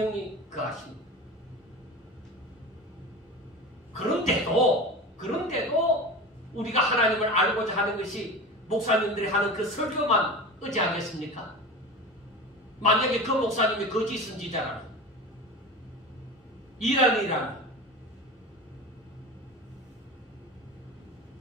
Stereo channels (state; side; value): normal; both; correlation 0.30